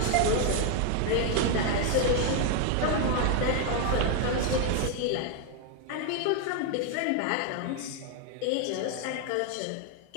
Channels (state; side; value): different; both; correlation 0.01